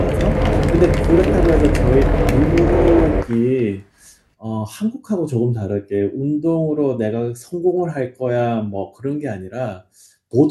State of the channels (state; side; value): identical; both; correlation 1.00